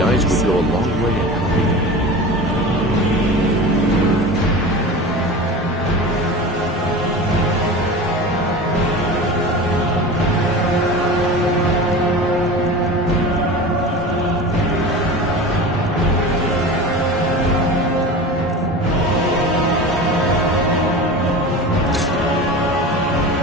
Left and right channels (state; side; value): normal; both; correlation 0.32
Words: eyes would go a long way in helping you.